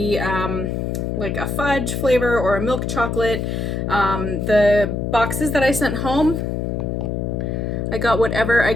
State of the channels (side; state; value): left; noise; hum, 2 dB below the sound